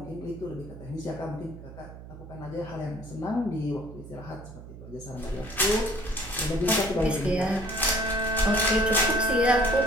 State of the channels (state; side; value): noise; right; hum, 15 dB below the sound